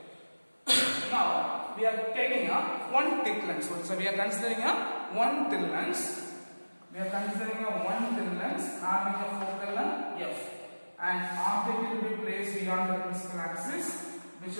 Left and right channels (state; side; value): inverted; both; correlation -1.00